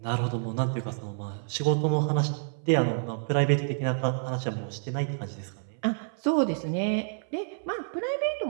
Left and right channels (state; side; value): silent; left; 59 dB below the other